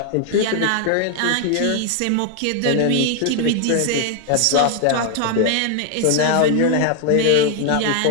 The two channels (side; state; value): both; different; correlation 0.00